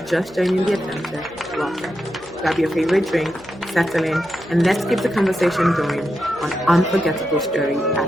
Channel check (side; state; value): right; noise; hum, 24 dB below the sound